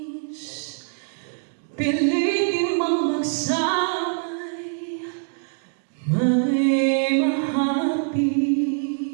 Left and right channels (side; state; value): left; silent; digital silence